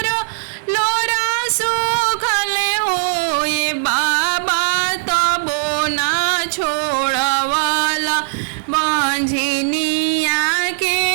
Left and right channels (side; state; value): left; silent; digital silence